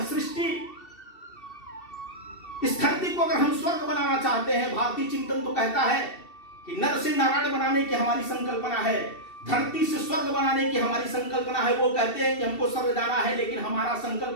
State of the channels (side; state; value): right; late; 2.7 ms